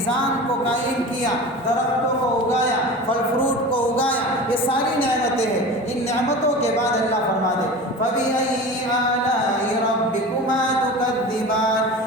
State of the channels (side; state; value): both; normal; correlation 0.33